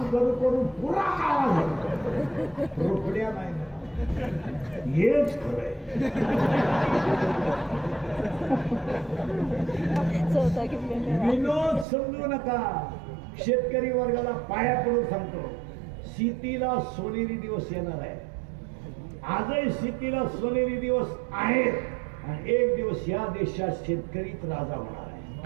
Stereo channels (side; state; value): left; drops out; at 11.9 s